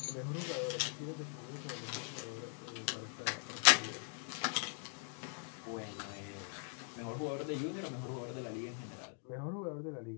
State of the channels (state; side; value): silent; right; 50 dB below the other